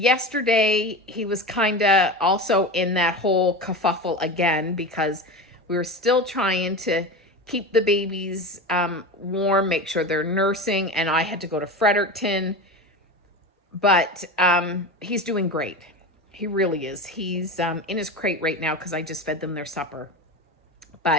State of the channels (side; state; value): both; normal; correlation 0.26